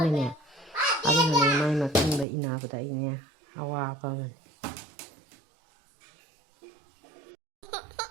ꯑꯗꯨꯅꯅꯦ ꯃꯥꯏ ꯃꯇꯨꯡꯗ ꯏꯟꯅꯕꯗ ꯑꯩꯅꯦ ꯑꯋꯥꯕ ꯑꯃꯅꯤ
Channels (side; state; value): left; drops out; at 2.2 s